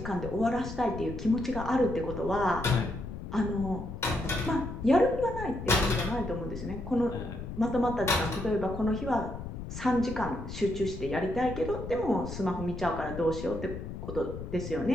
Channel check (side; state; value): left; noise; rumble, 8 dB below the sound